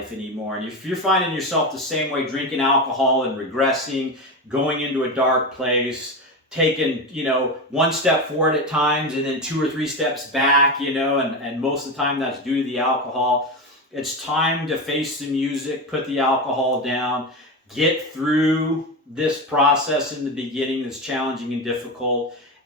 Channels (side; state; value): both; normal; correlation 0.19